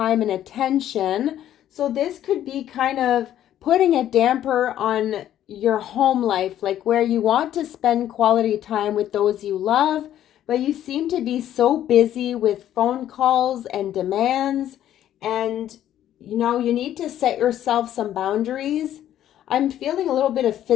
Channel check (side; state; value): right; quieter; 11.6 dB